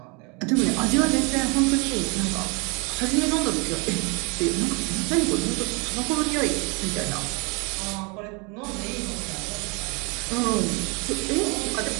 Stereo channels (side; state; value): left; quieter; 31.1 dB